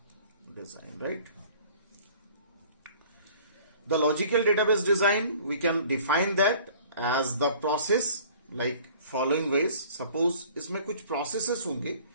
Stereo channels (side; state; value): both; inverted; correlation -0.50